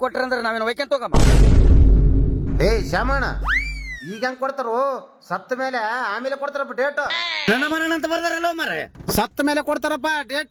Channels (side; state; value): both; identical; correlation 1.00